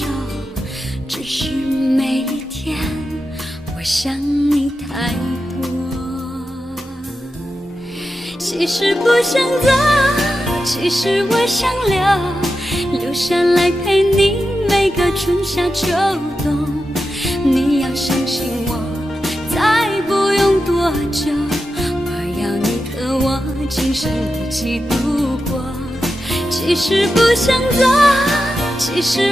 只是每一天我想你太多。其实不想走，其实我想留下来陪你每个春夏秋冬。你要相信我，再不用多久，我要你和我今生一起度过。其实不想走，其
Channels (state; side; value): normal; both; correlation 0.90